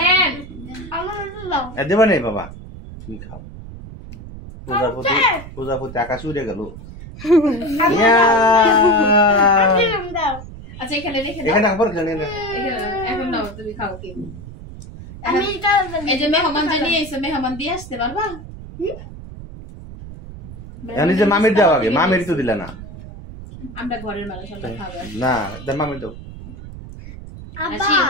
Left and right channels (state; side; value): noise; right; rumble, 13 dB below the sound